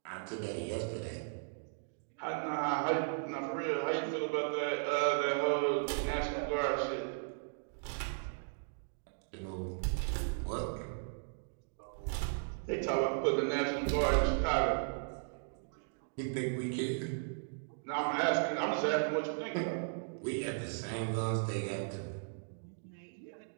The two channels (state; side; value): silent; left; digital silence